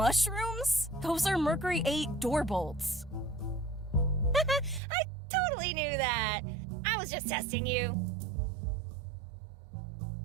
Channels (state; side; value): drops out; left; at 4.8 s